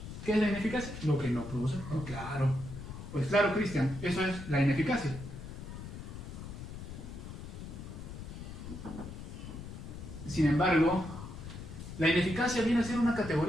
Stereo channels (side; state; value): left; noise; rumble, 10 dB below the sound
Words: ¿Qué es la ineficacia? Lo que no produce. Oh, claro. Pues claro, Cristian, eso es la ineficacia. Sin embargo, la ineficacia viene a ser una